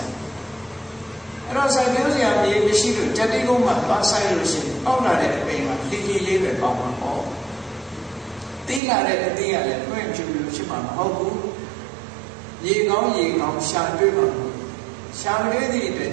rồi sai điều gì à gì xí được chặt đi không mà bắt sai rồi xí, ông là để mình mà đi lấy về phòng mà có, tí là để tí là để mấy em chịu được chứ mà không cú, gì ngóng sang chơi mà sáng đấy thì để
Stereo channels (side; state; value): left; drops out; at 8.8 s